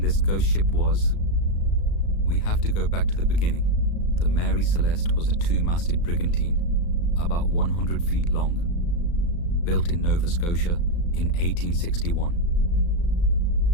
this ghost ship was, we have to go back to the beginning. The Mary Celeste was a 2-masted brigantine, about 100 feet long, built in Nova Scotia in 1861.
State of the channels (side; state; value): right; late; 35 ms